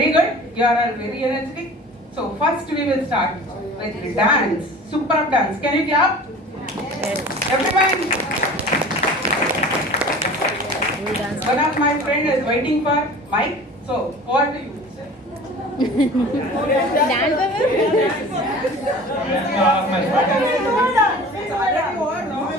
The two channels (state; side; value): normal; both; correlation 0.41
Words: good. You are all very energetic. So first we will start with the dance. Superb dance. Can you clap? Yes. Everyone. One of my friend is waiting for mic. So what do you say? Good